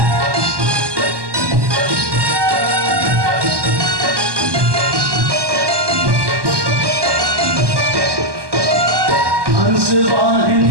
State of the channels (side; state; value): left; late; 1.2 ms